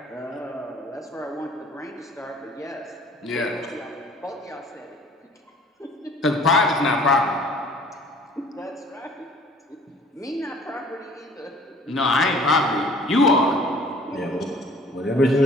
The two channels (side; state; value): both; normal; correlation 0.52